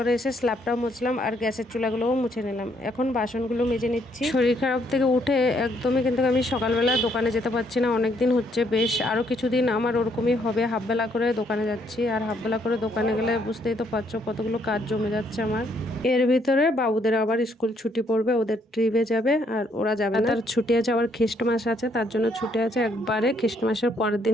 এসে স্ল্যাবটাও মুছলাম আর গ্যাসের চুলাগুলোও মুছে নিলাম। এখন বাসনগুলো মেজে নিচ্ছি। শরীর খারাপ থেকে উঠে একদমই কিন্তু আমি সকালবেলা দোকানে যেতে পারছি না, অনেকদিন হচ্ছে। বেশ আরও কিছুদিন আমার ওরকমই হবে, হাফবেলা করে দোকানে যাচ্ছি। আর হাফবেলা করে দোকানে গেলে বুঝতেই তো পারছো কতগুলো কাজ জমে যাচ্ছে আমার। এর ভিতরে বাবুদের আবার স্কুল ছুটি পড়বে, ওদের ট্রিপে যাবে আর ওরা যাবে না। তার ছুটি আছে, আবার খ্রিস্টমাস আছে, তার জন্য ছুটি আছে একবারে। খ্রিস্টমাসের পরের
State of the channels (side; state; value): both; normal; correlation 0.70